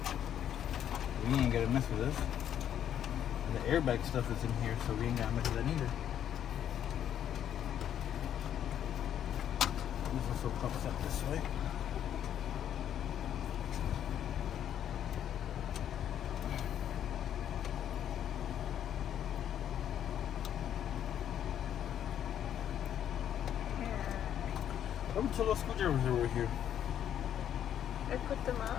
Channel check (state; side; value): quieter; right; 10.0 dB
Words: We ain't gotta mess with this. And the airbag stuff is in here, so we ain't gotta mess with that either. This also pops up this way. How many little screwdrivers are over here? I put them